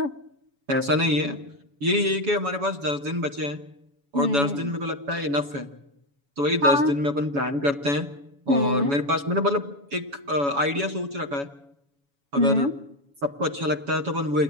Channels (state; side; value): late; left; 7.1 ms